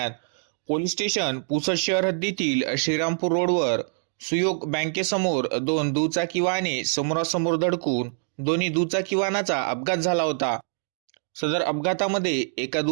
पोलीस स्टेशन पुसद शहर हद्दीतील श्रीरामपूर रोडवर सुयोग बँकेसमोर दोन दुचाकी वाहने समोरासमोर धडकून दोन्ही दुचाकी वाहनाचा अपघात झाला होता. सदर अपघातामध्ये एका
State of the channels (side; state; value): left; silent; digital silence